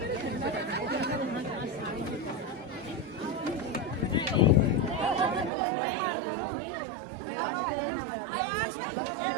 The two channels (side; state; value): left; drops out; at 5.5 s